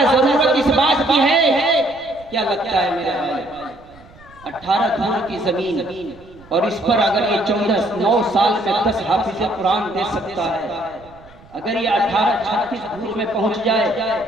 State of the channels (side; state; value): right; noise; rumble, 24 dB below the sound